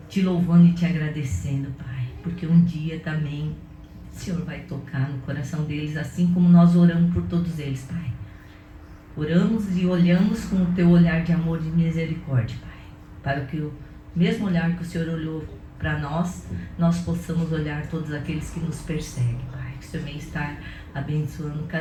te louvando e te agradecendo, Pai, porque um dia também o Senhor vai tocar no coração deles, assim como nós oramos por todos eles, Pai. Oramos e olhamos com o teu olhar de amor e de misericórdia, Pai, para que o mesmo olhar que o Senhor olhou para nós, nós possamos olhar todos aqueles que nos perseguem, Pai. Que o Senhor venha estar abençoando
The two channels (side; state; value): both; identical; correlation 1.00